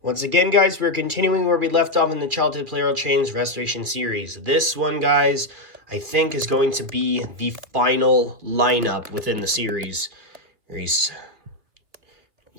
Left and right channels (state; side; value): late; left; 2.1 ms